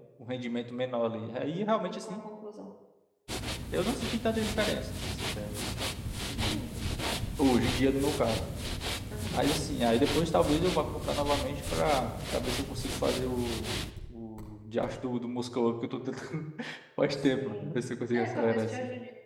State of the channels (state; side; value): identical; both; correlation 1.00